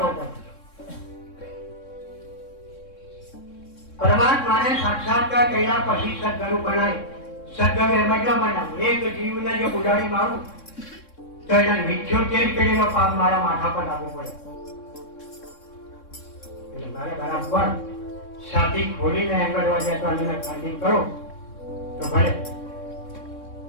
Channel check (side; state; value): right; late; 3.6 ms